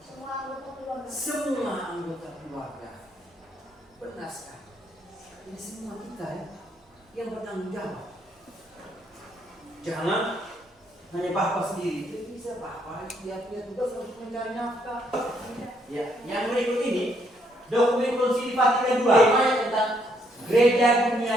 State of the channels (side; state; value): both; normal; correlation 0.71